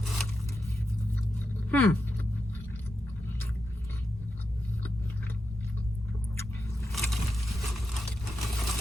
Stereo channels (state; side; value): normal; both; correlation 0.88